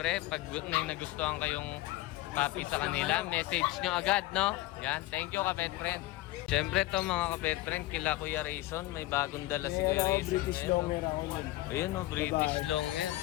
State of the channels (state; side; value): quieter; right; 17.8 dB